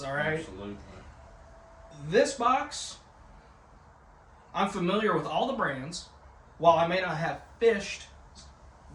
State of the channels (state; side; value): identical; both; correlation 1.00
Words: all right? Absolutely. This box, I'm familiar with all the brands. While I may not have fished